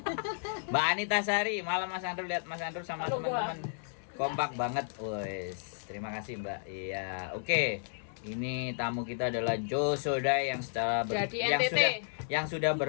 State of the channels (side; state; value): right; silent; digital silence